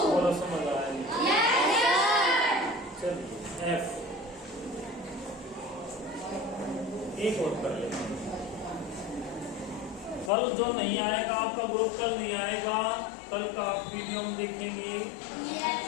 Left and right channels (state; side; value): drops out; right; at 10.3 s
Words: बोलो, समझ आया? चलिए F एक और कर लेते हैं। कल जो नहीं आएगा, आपका ग्रुप कल नहीं आएगा, कल का आप वीडियो हम देखेंगे,